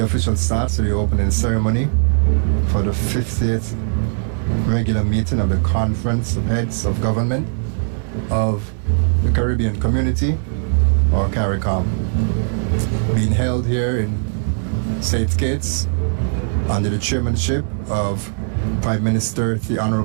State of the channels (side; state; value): left; silent; digital silence